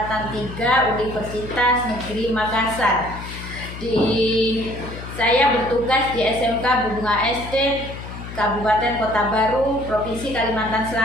3 Universitas Negeri Makassar. Saya bertugas di SMK Bunga Estate, Kabupaten Kota Baru, Provinsi Kalimantan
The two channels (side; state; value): left; noise; hum, 11 dB below the sound